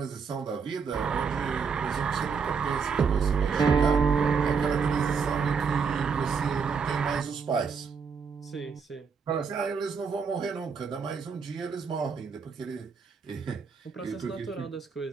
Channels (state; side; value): quieter; left; 5.7 dB